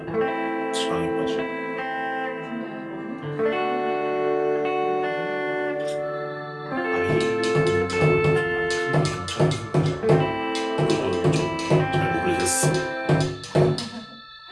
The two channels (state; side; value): identical; both; correlation 1.00